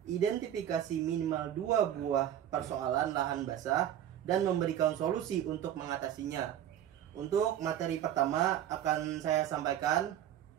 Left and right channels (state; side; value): quieter; left; 10.9 dB